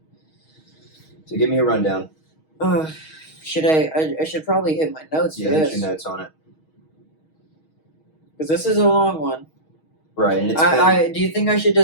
So give me a rundown. Should I should probably hit my notes for Hit this, your notes on it. because this is a long one. Right, and it's Do you think I should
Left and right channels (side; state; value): right; late; 6.3 ms